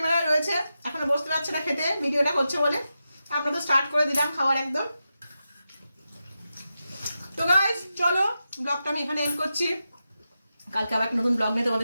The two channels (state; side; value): inverted; both; correlation -0.89